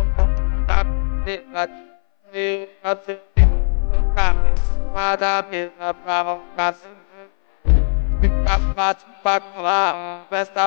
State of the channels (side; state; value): right; silent; 60 dB below the other